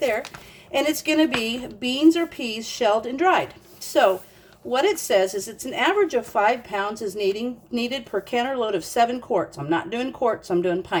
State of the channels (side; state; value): both; identical; correlation 1.00